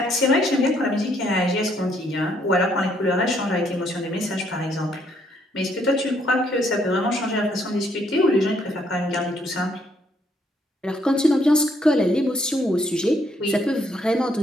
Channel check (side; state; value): both; normal; correlation 0.70